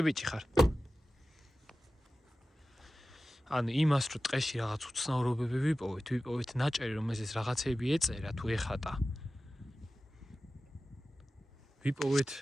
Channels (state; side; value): normal; both; correlation 0.95